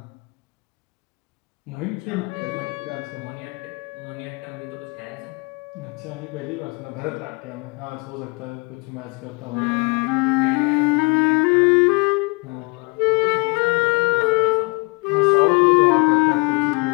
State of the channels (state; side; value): quieter; right; 30.4 dB